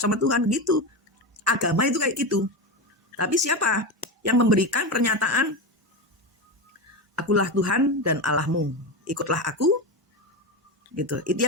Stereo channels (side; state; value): both; normal; correlation 0.18